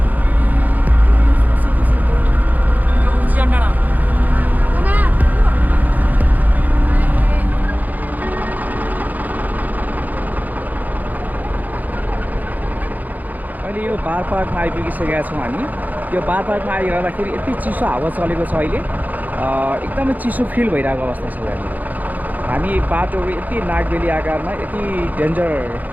यो बारपाकमा आइपुगिसकेका छौँ हामी। यो बारपाकमा आइरहँदाखेरि यति चिसो हावा चलेको छ अहिले, एकदमै चिसो फिल भइरहेको अवस्था छ यहाँनिर। हामी बाटोहरू यति नागबेली आकारमा यति डेन्जर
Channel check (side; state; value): left; late; 0.081 ms